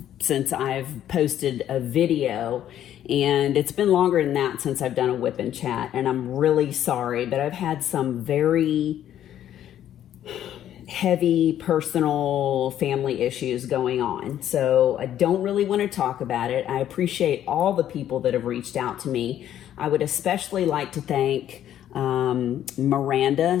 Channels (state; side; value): quieter; right; 11.2 dB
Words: since I've posted a video, and it's been longer than that since I've done a WIP N Chat, and I'm really sorry, but I've had some very heavy personal family issues going on. So I don't really want to talk about it. I appreciate all the people that have reached out to me. I would especially like to thank